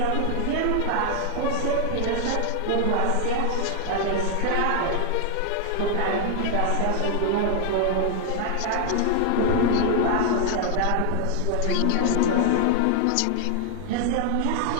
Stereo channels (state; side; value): different; both; correlation 0.00